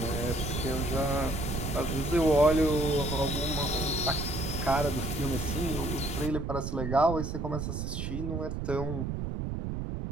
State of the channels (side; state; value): right; noise; rumble, 3 dB below the sound